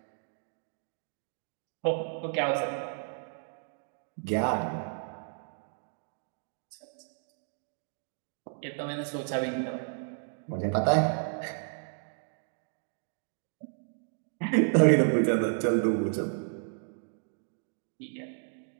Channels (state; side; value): silent; left; digital silence